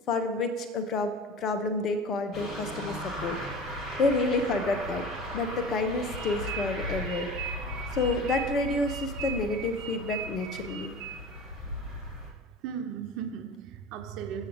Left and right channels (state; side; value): normal; both; correlation 0.36